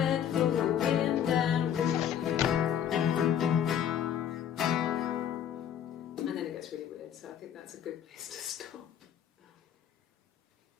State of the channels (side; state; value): right; quieter; 9.4 dB